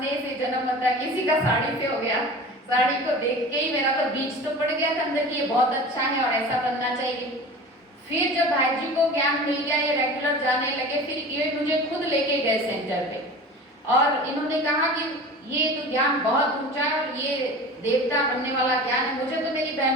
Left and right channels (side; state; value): both; normal; correlation 0.37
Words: से जन्म होता, किसी का साड़ी से हो गया। साड़ी को देख के ही मेरा तो बीच तो पड़ गया था अंदर की, ये बहुत अच्छा है और ऐसा बनना चाहिए। फिर जब भाई जी को ज्ञान मिल गया, ये रेगुलर जाने लगे, फिर ये मुझे खुद लेके गए सेंटर पे और इन्होंने कहा कि ये तो ज्ञान बहुत ऊंचा है और ये देवता बनने वाला ज्ञान है, मुझे तो मेरी